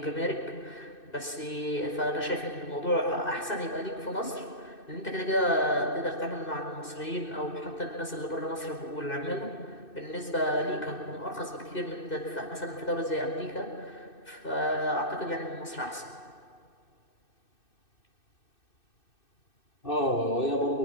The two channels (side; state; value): right; late; 2.6 ms